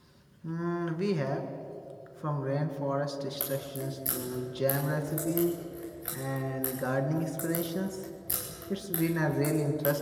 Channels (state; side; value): identical; both; correlation 1.00